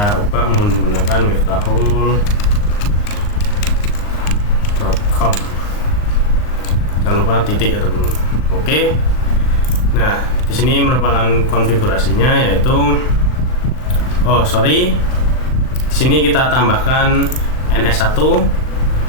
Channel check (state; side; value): late; right; 39 ms